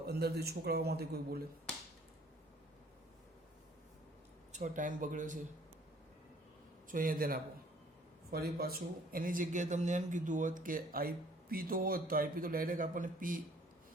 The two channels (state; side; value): normal; both; correlation 0.57